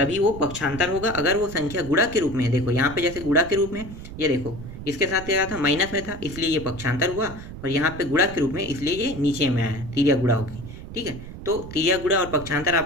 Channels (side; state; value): right; noise; rumble, 12 dB below the sound